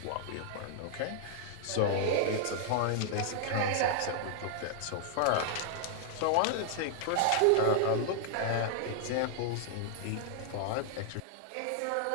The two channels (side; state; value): both; different; correlation -0.01